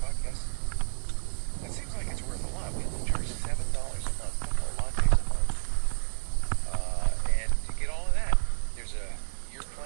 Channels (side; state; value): left; silent; 58 dB below the other